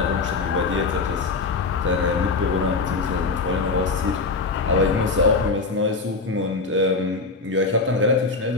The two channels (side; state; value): right; quieter; 4.0 dB